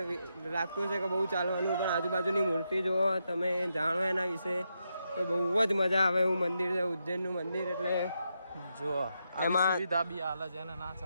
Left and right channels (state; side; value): inverted; both; correlation -0.84